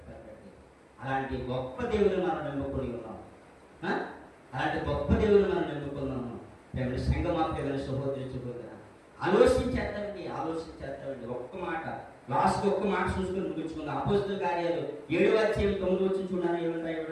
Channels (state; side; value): identical; both; correlation 1.00